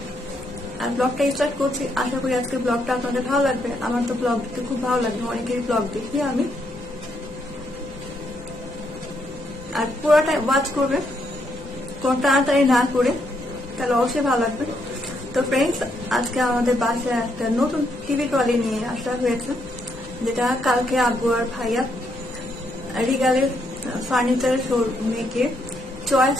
আর ব্লগটা স্টার্ট করছি। আশা করি আজকে ব্লগটা আপনাদের ভালো লাগবে। আমার তো ব্লগ দেখতে খুব ভালো লাগবে, অনেকেরই ব্লগ দেখি আমি। আর পুরোটা ওয়াচ করবে, কোনো তাড়াতাড়ি না করে, তাহলে অবশ্যই ভালো লাগবে। তো ফ্রেন্ডস, আজকে আমাদের বাসায় একটা নতুন টিভি ট্রলি নিয়ে আসা হয়েছে, যেটা কালকে আব্বু আর ভাইয়া রিগালের ফার্নিচার শোরুমে গিয়ে চয়েস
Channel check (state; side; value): normal; both; correlation 0.76